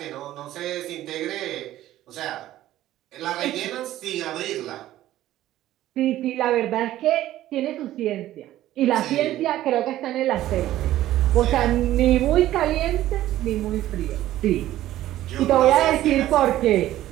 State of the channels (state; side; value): quieter; left; 14.1 dB